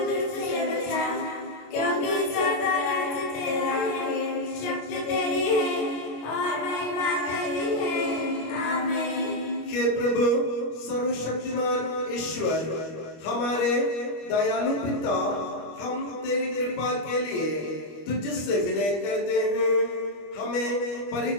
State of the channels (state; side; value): late; right; 25 ms